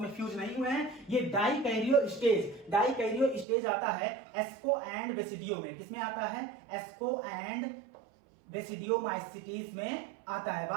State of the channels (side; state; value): left; drops out; at 3.5 s